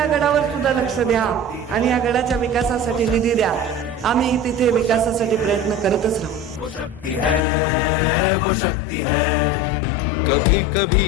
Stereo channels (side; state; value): right; drops out; at 7.4 s